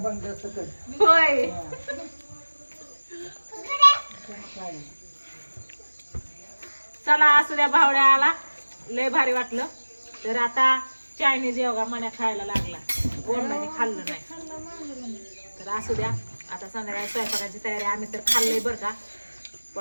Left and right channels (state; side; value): inverted; both; correlation -1.00